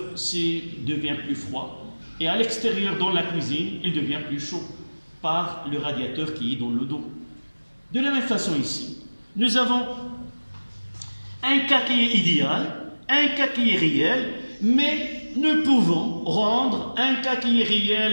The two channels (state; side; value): inverted; both; correlation -1.00